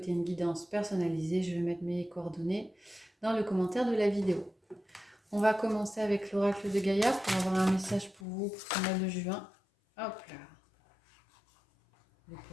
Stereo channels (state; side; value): drops out; right; at 8.2 s